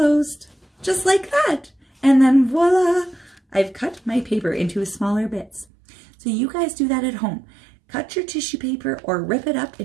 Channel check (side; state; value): left; drops out; at 5.7 s